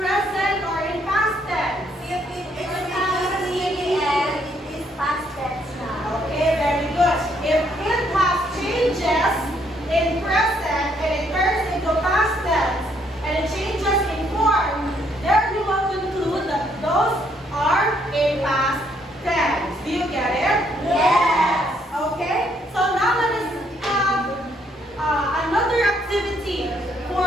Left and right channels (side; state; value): both; normal; correlation 0.70